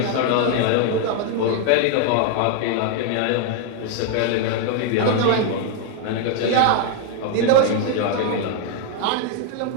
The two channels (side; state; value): both; different; correlation 0.01